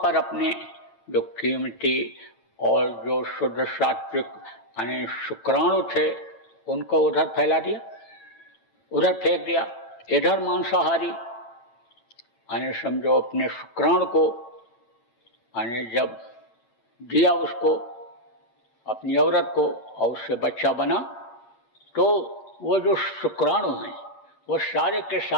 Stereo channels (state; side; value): late; right; 9.0 ms